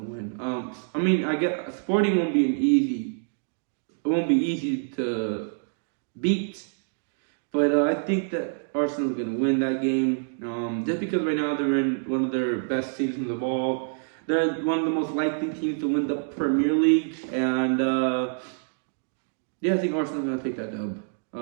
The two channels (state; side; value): silent; left; digital silence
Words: win. I mean, I get Sporting won't be it won't be easy to beat, but I think that Arsenal's gonna win that game. Just because right now they're in one of their best seasons of all. They're one of the most likely teams to win the Premier League, and yeah, I think Arsenal's gonna take that dub.